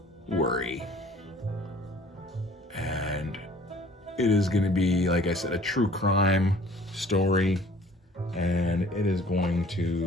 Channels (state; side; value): normal; both; correlation 0.53